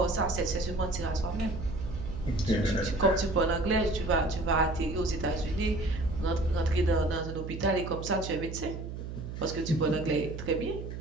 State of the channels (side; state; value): right; noise; hum, 8 dB below the sound